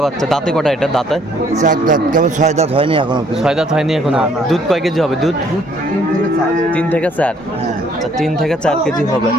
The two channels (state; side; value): normal; both; correlation 0.63